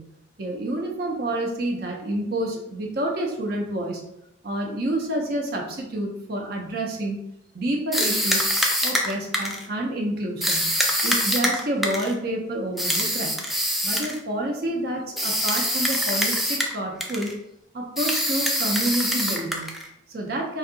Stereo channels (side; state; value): both; normal; correlation 0.46